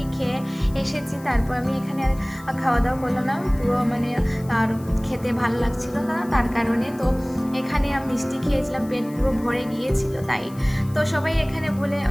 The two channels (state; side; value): noise; left; hiss, 23 dB below the sound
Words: খেয়ে এসেছি, তারপর আমি এখানে আর খাওয়া দাওয়া করলাম না, পুরো আর খেতে ভালো লাগছিল না, তার কারণে। তো এখানে আমি মিষ্টি খেয়েছিলাম, পেট পুরো ভরে গিয়েছিল তাই। তো সবাই এখানে